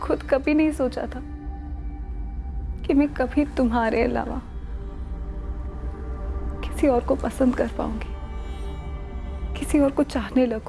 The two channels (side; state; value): both; identical; correlation 1.00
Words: कभी नहीं सोचा था कि मैं कभी तुम्हारे अलावा किसी और को पसंद कर पाऊंगी, किसी और को चाहने